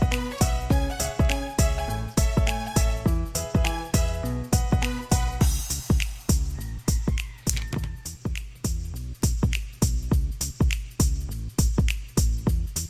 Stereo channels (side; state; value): both; identical; correlation 1.00